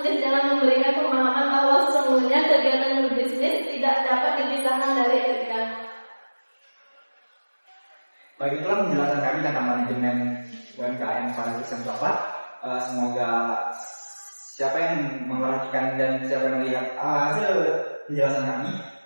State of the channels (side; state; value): both; inverted; correlation -1.00